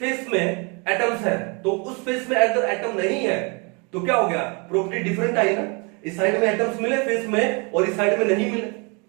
में एटम्स है, तो उस फेस में अगर एटम नहीं है तो क्या हो गया, प्रॉपर्टी डिफरेंट आई ना। इस साइड में एटम्स मिले फेस में और इस साइड में नहीं मिले,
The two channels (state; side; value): quieter; left; 32.2 dB